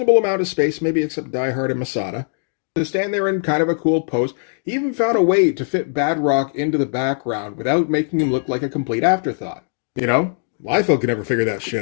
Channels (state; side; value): silent; right; digital silence